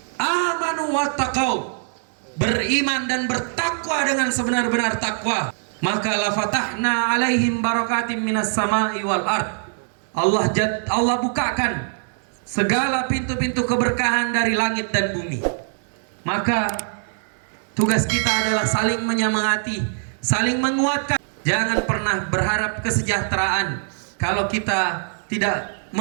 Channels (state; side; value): silent; left; digital silence